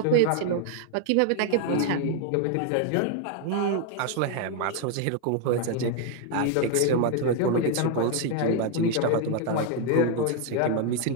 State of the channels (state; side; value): different; both; correlation 0.00